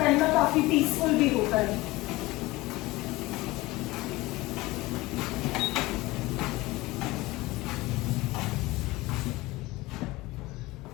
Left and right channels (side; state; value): right; quieter; 20.2 dB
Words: ना काफी पीसफुल भी होता है।